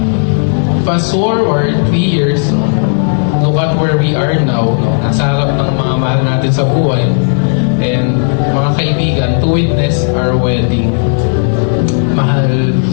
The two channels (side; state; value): right; silent; digital silence